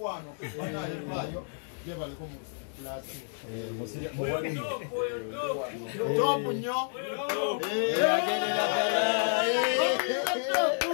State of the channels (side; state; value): right; silent; digital silence